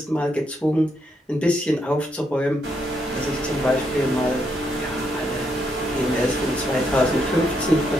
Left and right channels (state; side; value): normal; both; correlation 0.78